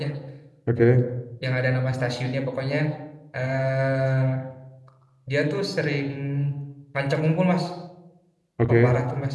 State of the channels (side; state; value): both; identical; correlation 1.00